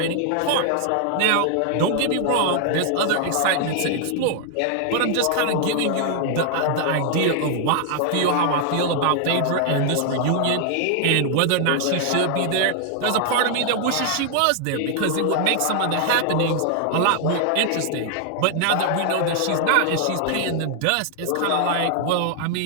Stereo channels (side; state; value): both; different; correlation 0.00